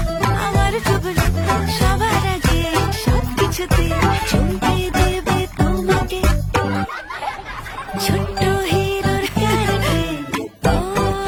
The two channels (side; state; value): both; identical; correlation 1.00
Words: আমার টুবলু সবার আগে সব কিছুতে চমকে দেবে তোমাকে ছোট্ট হিরোর কারণে ও